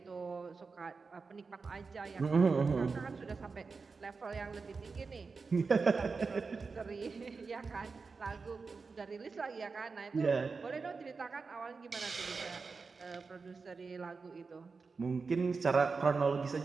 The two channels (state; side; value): quieter; left; 4.6 dB